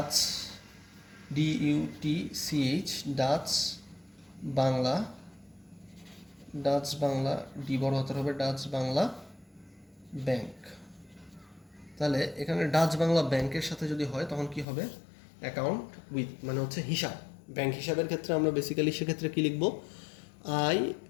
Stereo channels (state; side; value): drops out; right; at 14.7 s